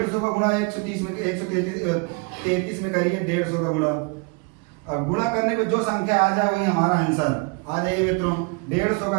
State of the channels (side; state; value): left; quieter; 32.3 dB